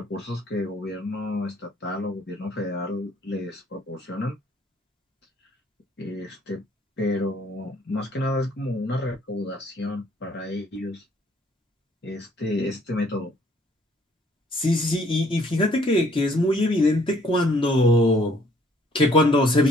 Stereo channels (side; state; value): both; normal; correlation 0.62